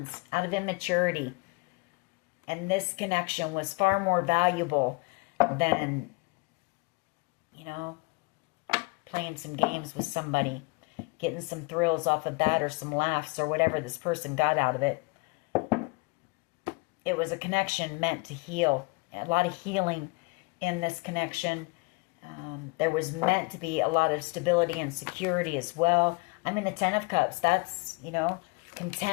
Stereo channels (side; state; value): right; quieter; 28.6 dB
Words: out of immaturity. And this connection was far more valuable than, you know, playing some games with somebody, getting some thrills off of that or some laughs or whatever this person got out of it. It was a connection meant to heal. A lot of healing in this connection. There was meant to be a lot of stability and security as well. I'm in the 10 of Cups. That's, you know,